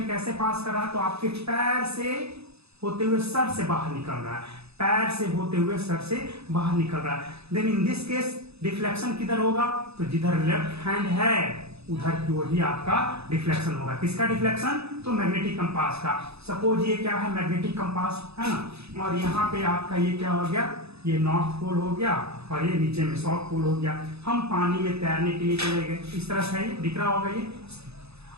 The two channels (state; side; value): late; left; 0.79 ms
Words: कैसे पास कर रहा है, तो आपके पैर से होते हुए सर से बाहर निकल रहा है, पैर से होते हुए सर से बाहर निकल रहा है। Then in this case deflection किधर होगा, तो जिधर लेफ्ट हैंड है उधर की ओर ही आपका डिफ्लेक्शन होगा। किसका डिफ्लेक्शन, तो मैग्नेटिक कंपास का। सपोज ये क्या है, मैग्नेटिक कंपास है ना, और यहाँ पे आपका ये क्या हो गया, ये नॉर्थ पोल हो गया और ये नीचे में साउथ पोल हो गया। हम पानी में तैरने के लिए चले गए, इस तरह से ये दिख रहा होगा ये,